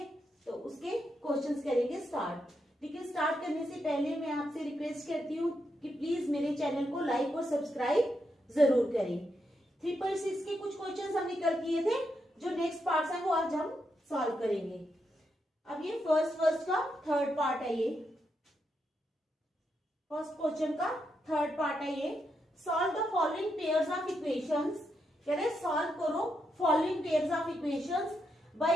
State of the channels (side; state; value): both; normal; correlation 0.82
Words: तो उसके क्वेश्चंस करेंगे स्टार्ट। लेकिन स्टार्ट करने से पहले मैं आपसे रिक्वेस्ट करती हूँ कि प्लीज मेरे चैनल को लाइक और सब्सक्राइब जरूर करें। 3.6 के कुछ क्वेश्चंस हमने कल किए थे, जो नेक्स्ट पार्ट्स हैं वो आज हम सॉल्व करेंगे। अब ये फर्स्ट का थर्ड पार्ट है। ये फर्स्ट क्वेश्चन का थर्ड पार्ट है। ये solve the following pairs of equations. कह रहे सॉल्व करो following pairs of equations